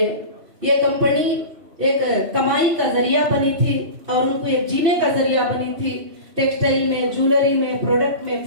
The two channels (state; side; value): late; left; 2.6 ms